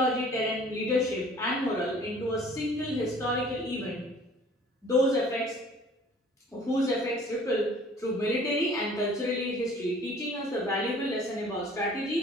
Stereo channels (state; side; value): normal; both; correlation 0.52